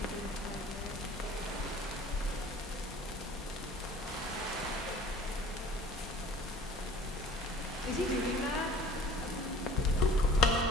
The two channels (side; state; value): both; normal; correlation 0.46